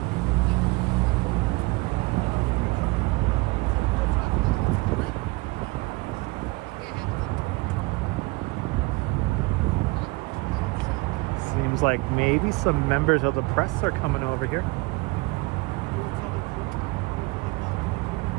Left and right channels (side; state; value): left; quieter; 24.3 dB